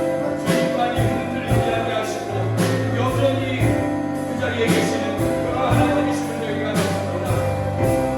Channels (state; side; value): identical; both; correlation 1.00